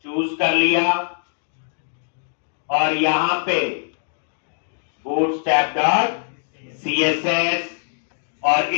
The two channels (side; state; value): right; silent; 64 dB below the other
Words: चूज कर लिया, और यहां पे bootstrap.css, और